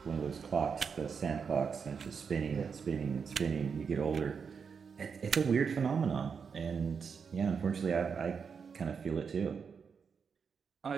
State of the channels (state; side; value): quieter; left; 6.1 dB